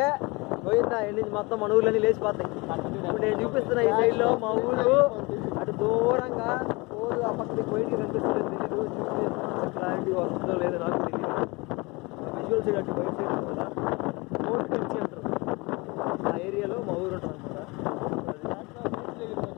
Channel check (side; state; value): right; quieter; 25.7 dB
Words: పోయిందా ఎండి మొత్తం మన ఊర్లన్నీ లేచిపోతాయి. ఇప్పుడు నేను చూపిస్తున్న ఈ సైడ్లో మా ఊరు అటు దూరంగా ఊరు ఆ పక్కకి పోయింది కనిపిస్తుందో తెలీదు. క్లారిటీ వస్తుందో లేదో నాకు తెలియదు. విజువల్ సైడ్ అటు బయట సైడ్ కదా ఫోర్ట్ టెన్సీ అంటారు. ఆ ఏరియాలో మా ఊరు ఉంటుంది అనమాట.